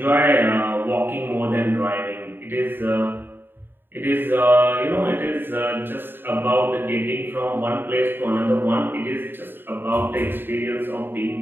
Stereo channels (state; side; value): late; left; 0.097 ms